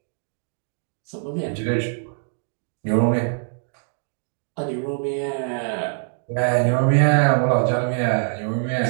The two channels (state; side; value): silent; left; digital silence